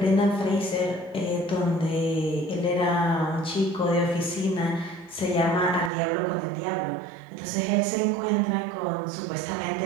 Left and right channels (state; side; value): drops out; left; at 5.9 s